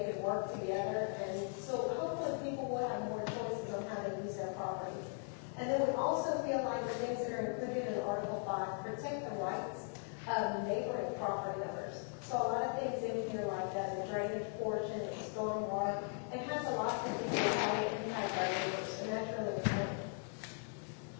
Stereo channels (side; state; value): right; silent; 52 dB below the other